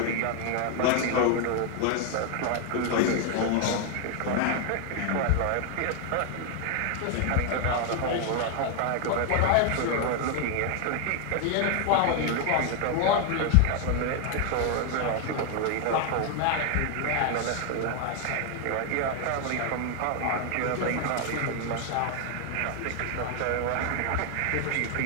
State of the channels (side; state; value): both; different; correlation 0.00